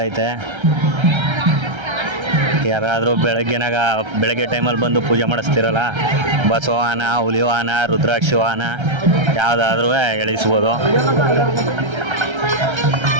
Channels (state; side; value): late; left; 1.3 ms